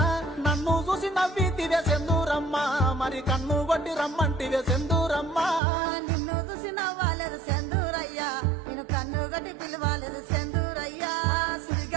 నన్ను చూసి నవ్వితివే సెందూరమ్మ మరి కన్ను కొట్టి రమ్మంటివే సెందూరమ్మ నిన్ను చూసి నవ్వాలేదు సెందూరయ్యా నేను కన్ను గట్టి పిలవాలేదు సెందూరయ్యా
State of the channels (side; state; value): left; drops out; at 5.6 s